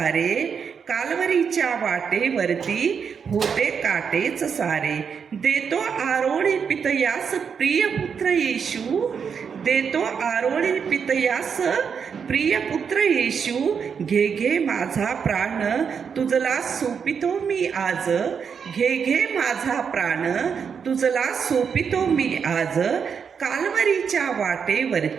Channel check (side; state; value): left; quieter; 6.6 dB